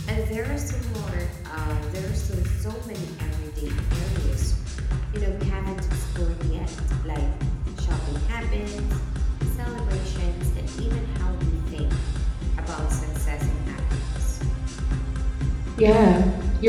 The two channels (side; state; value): both; identical; correlation 1.00